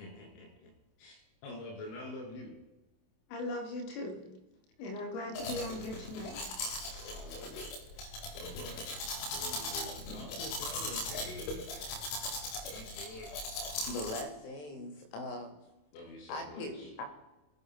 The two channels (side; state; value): right; late; 27 ms